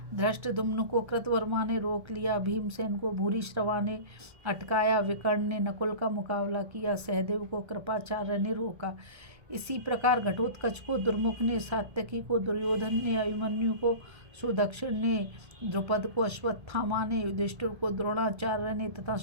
धृष्टद्युम्न को कृतवर्मा ने रोक लिया। भीमसेन को भूरिश्रवा ने अटकाया। विकर्ण ने नकुल का मुकाबला किया। सहदेव को कृपाचार्य ने रोका। इसी प्रकार घटोत्कच को दुर्मुख ने, सात्यकी को दुर्योधन ने, अभिमन्यु को सुदक्षिण ने, द्रुपद को अश्वत्थामा ने, युधिष्ठिर को द्रोणाचार्य ने तथा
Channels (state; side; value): late; left; 1.3 ms